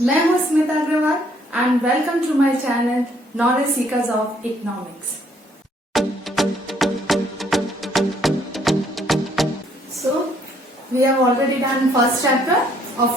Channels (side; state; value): both; normal; correlation 0.65